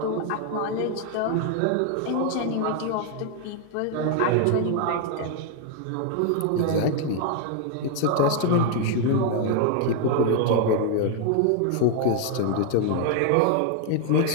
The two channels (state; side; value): different; both; correlation 0.00